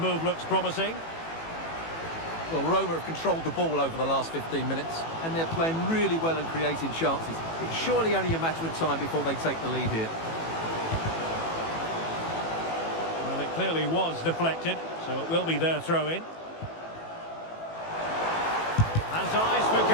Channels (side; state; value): right; late; 18 ms